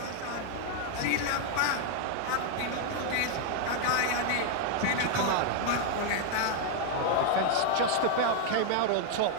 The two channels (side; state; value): both; different; correlation 0.00